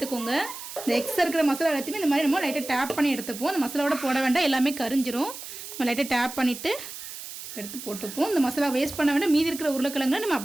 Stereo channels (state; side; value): noise; right; hiss, 11 dB below the sound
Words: இந்த எக்ஸ்ட்ரா இருக்கிற மசாலா எல்லாத்தையுமே இந்த மாதிரி நம்ம லைட்டாக டேப் பண்ணி எடுத்துப்போம். அந்த மசாலாவோட போட வேண்டாம், எல்லாமே கரிஞ்சிரும். நம்ம லைட்டாக டேப் பண்ணிவிட்டு எடுத்து போட்டுப்போம். இந்த மசாலா வேஸ்ட் பண்ண வேண்டாம். மீதி இருக்கிற உருளைக்கிழங்கு நம்ம